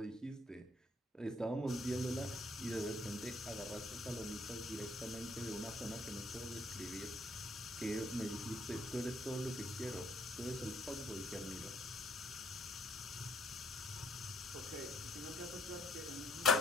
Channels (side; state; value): both; normal; correlation 0.65